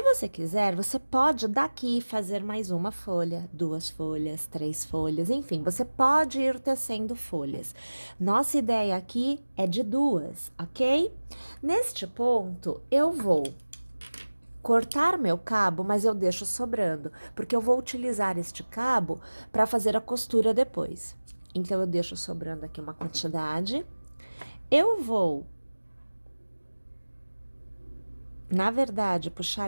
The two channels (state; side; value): inverted; both; correlation -1.00